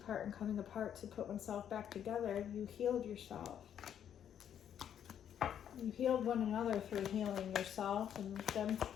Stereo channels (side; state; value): right; quieter; 9.4 dB